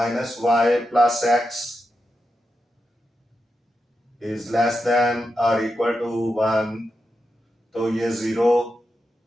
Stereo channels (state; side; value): normal; both; correlation 0.88